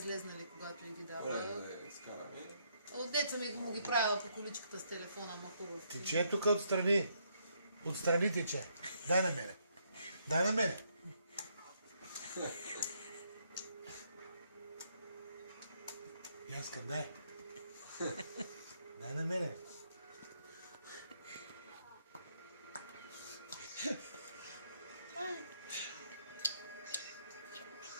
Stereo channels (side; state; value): both; inverted; correlation -0.73